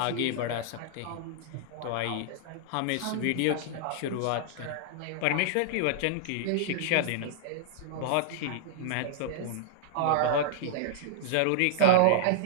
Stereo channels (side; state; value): both; different; correlation -0.01